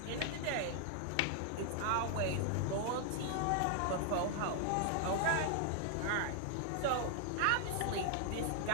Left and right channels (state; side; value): different; both; correlation 0.00